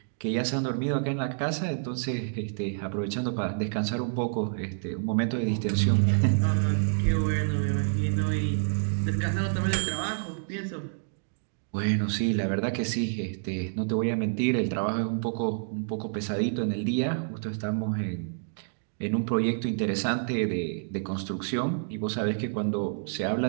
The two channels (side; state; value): left; silent; digital silence